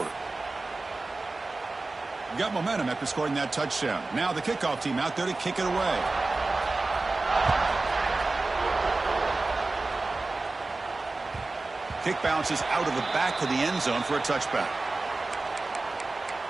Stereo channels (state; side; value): quieter; left; 3.4 dB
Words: Got momentum after scoring that touchdown. Now the kickoff team out there to kick it away. Kick bounces out of the back of the end zone for a touchback.